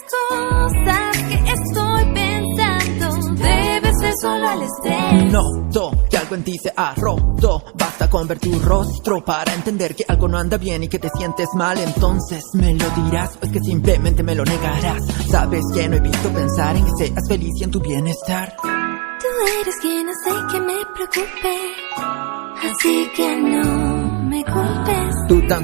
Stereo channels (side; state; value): left; quieter; 30.5 dB